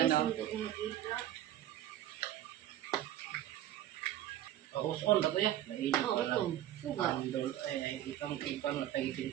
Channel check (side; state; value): left; quieter; 12.6 dB